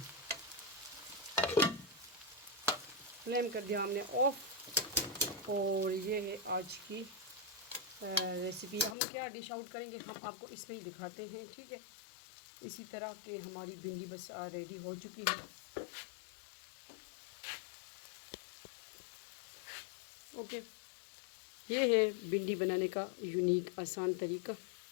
फ्लेम कर दिया हमने ऑफ। और ये है आज की रेसिपी। हम क्या डिश आउट करेंगे हम आपको इसमें ही दिखाते हैं, ठीक है। इसी तरह के हमारी भिंडी बस रेडी हो चुकी है। ओके, ये है भिंडी बनाने का यूनिक आसान तरीका।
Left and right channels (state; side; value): drops out; right; at 9.0 s